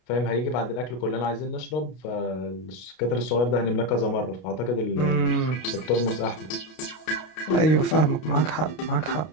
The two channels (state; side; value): late; right; 32 ms